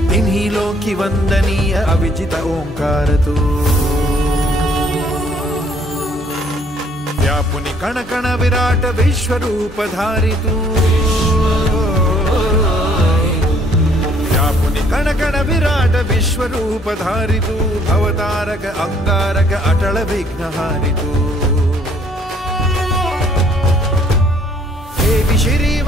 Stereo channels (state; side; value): normal; both; correlation 0.62